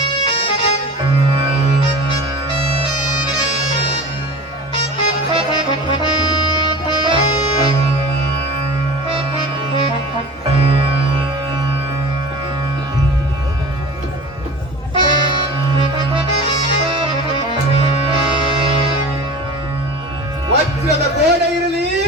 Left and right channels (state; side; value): normal; both; correlation 0.37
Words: ವಜ್ರದ ಗೋಡೆ ಇರಲಿ,